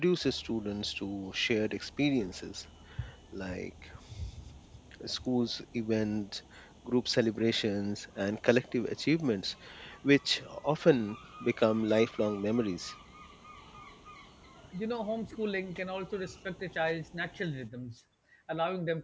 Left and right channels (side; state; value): both; identical; correlation 1.00